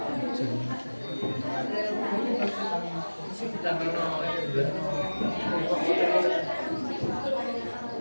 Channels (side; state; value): both; inverted; correlation -1.00